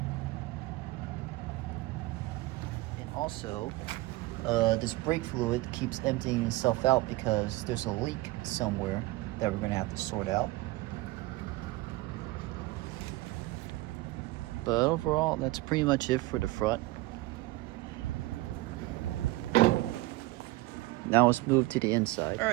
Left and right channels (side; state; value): left; quieter; 19.8 dB